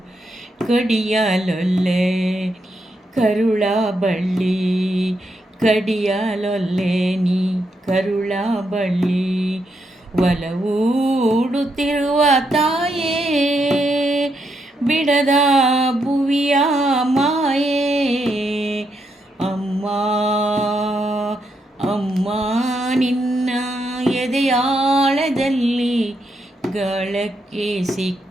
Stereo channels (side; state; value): both; normal; correlation 0.80